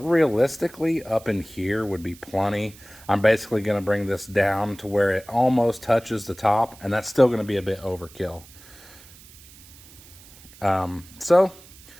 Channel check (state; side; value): noise; right; hiss, 22 dB below the sound